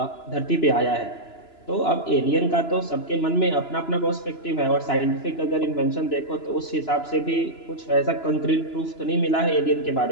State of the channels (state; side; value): late; right; 2.9 ms